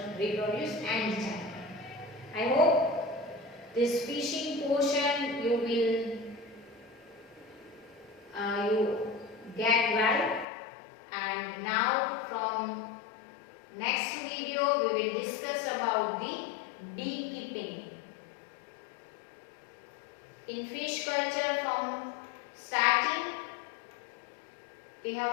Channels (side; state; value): right; drops out; at 10.5 s